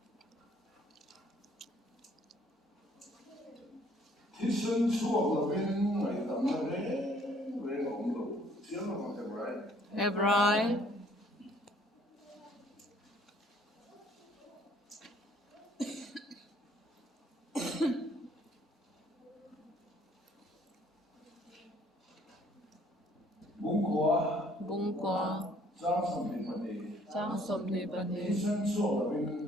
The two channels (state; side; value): normal; both; correlation 0.61